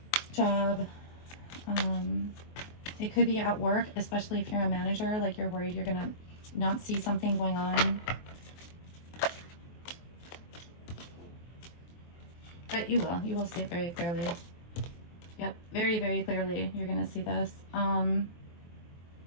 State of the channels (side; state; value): right; late; 23 ms